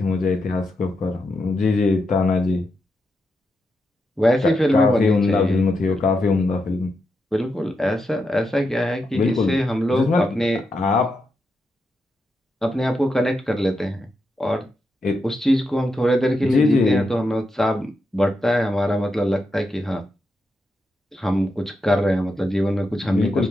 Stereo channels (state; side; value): normal; both; correlation 0.85